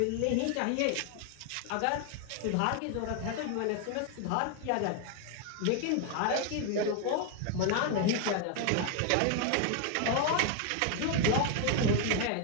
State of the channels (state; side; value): different; both; correlation 0.01